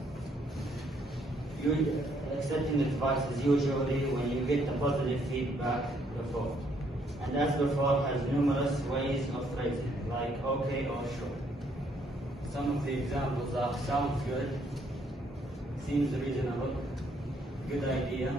Accepting advice is usually when you get the positive feedback before. And as before has numerous ways of phrasing, like okay or sure. Some of the examples are sounds good, seems reasonable, good idea,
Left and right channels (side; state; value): both; normal; correlation 0.69